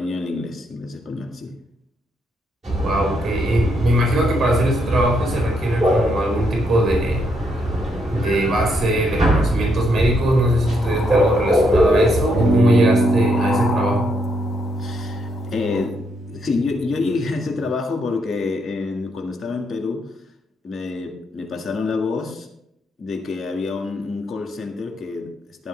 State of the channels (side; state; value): both; normal; correlation 0.76